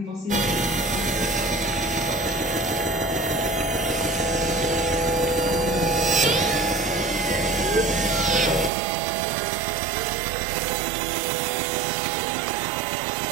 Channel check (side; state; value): left; drops out; at 8.7 s